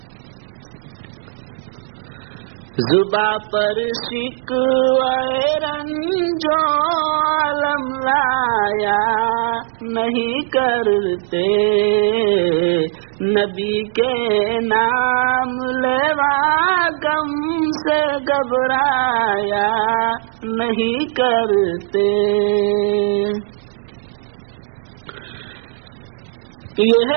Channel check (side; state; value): left; silent; digital silence